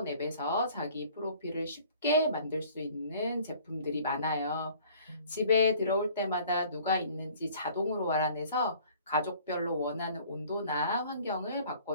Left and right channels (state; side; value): inverted; both; correlation -0.53